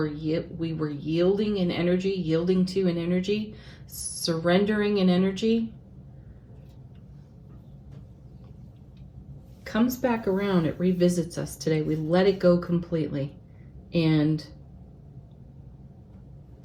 we were yielding in energy, yielding to an energy, surrendering an energy, comes back around. It revisits us today. We let it go completely. And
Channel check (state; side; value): identical; both; correlation 1.00